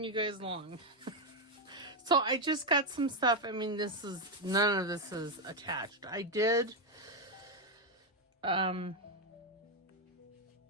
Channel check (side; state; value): both; normal; correlation 0.04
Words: you guys along. So I just got some stuff. I mean, none of this is attached. I did, put a